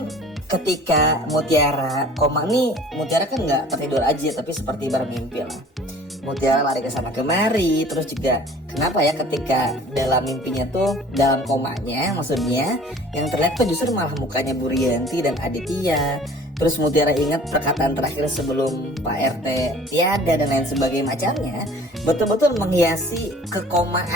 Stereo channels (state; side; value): normal; both; correlation 0.48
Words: ketika Mutiara koma nih, Mutiara kan nggak tertidur aja tapi seperti bermimpi lah. Mutiara lari ke sana kemari, terus juga kenapa ya ketika dalam mimpinya tuh, dalam komanya maksudnya, yang terlihat tuh justru malah mukanya Bu Rianti dan Aditya. Terus Mutiara ingat perkataan terakhir sebelum Pak RT tiada dan lain sebagainya macamnya, betul-betul menghiasi